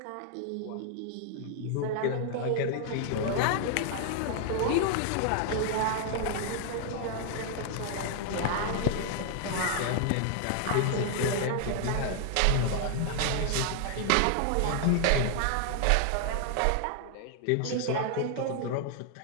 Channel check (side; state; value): both; different; correlation 0.00